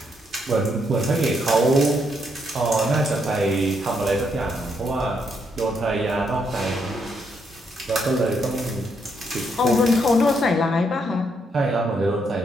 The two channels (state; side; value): normal; both; correlation 0.76